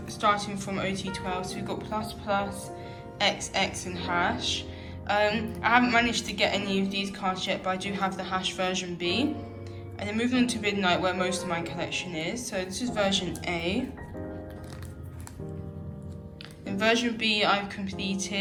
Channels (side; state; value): both; identical; correlation 1.00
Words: starting from OT12, so we've got Plus Plus, XX and Hash. I haven't managed to get any of these cards yet, but I do have the Hash version B. And then moving on to Midnight, where most of my collection is. So this is version A. In version B, I've